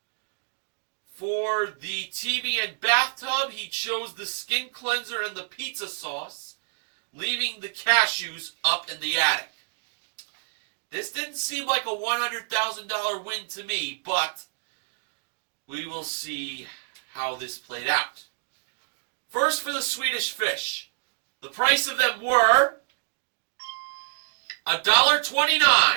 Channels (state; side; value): silent; left; digital silence